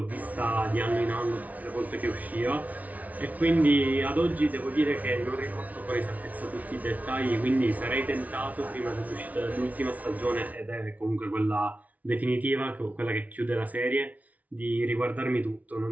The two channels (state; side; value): late; left; 0.072 ms